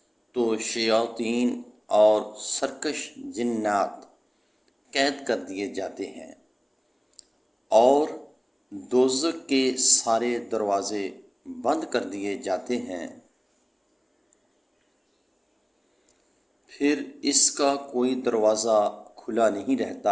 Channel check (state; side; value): identical; both; correlation 1.00